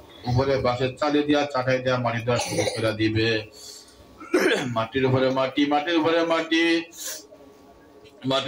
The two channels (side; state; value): both; identical; correlation 1.00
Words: উপরে বাঁশের চালে দিয়া চাটাই দিয়া মাটি দেওয়া শুরু করে দিবে। মাটির উপরে মাটি, মাটির উপরে মাটি,